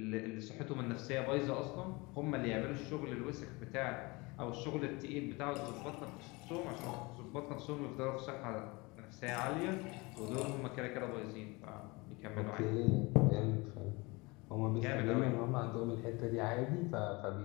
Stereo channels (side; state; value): right; quieter; 25.2 dB